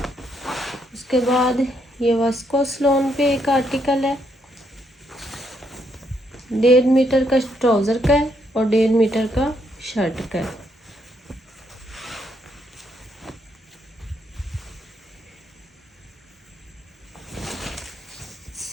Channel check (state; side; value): normal; both; correlation 0.75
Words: उसके बाद ये विस्कोस लॉन पे एक आर्टिकल है, 1.5 मीटर का ट्राउज़र का है और 1.5 मीटर का शर्ट का है।